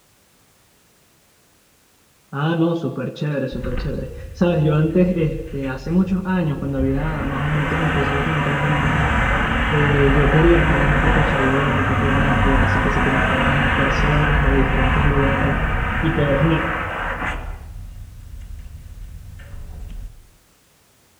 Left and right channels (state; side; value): identical; both; correlation 1.00